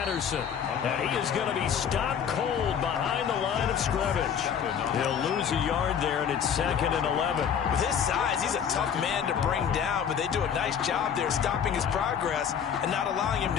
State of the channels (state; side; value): quieter; right; 7.9 dB